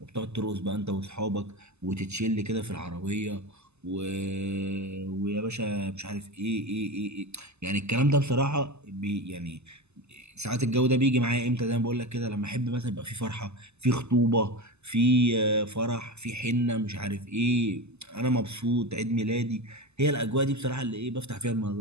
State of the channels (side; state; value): left; late; 0.80 ms